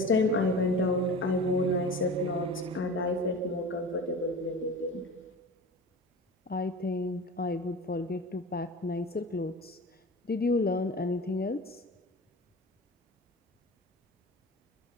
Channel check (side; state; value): both; normal; correlation 0.34